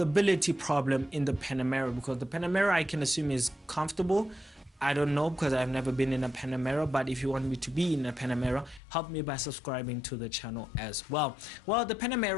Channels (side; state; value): right; drops out; at 8.8 s